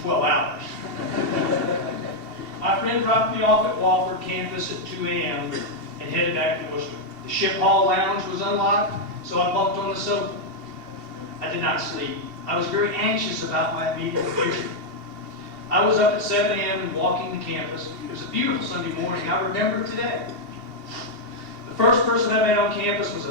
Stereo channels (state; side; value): late; left; 2.7 ms